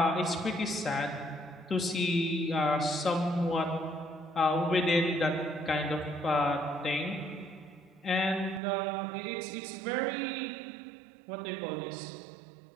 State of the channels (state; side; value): drops out; left; at 8.6 s